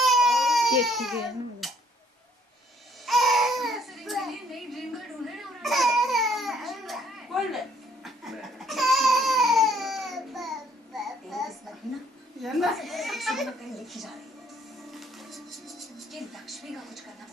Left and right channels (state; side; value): normal; both; correlation 0.64